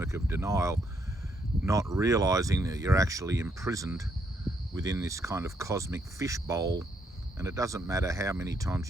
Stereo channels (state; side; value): normal; both; correlation 0.74